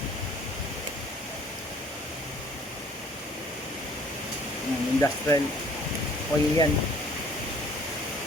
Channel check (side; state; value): both; normal; correlation 0.56